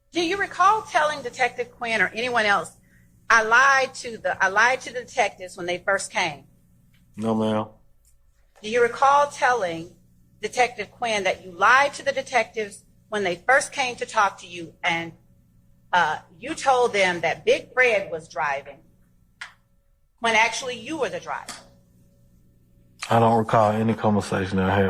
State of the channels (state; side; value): identical; both; correlation 1.00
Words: Do you recall telling Detective Quinn or anyone else, I lied to the detectives when they first came? No, ma'am. Do you recall telling Detective Quinn that you lied to the detectives when they first came to talk to you and you told them that Big Fred was driving when actually you were the driver? I don't recall any conversation I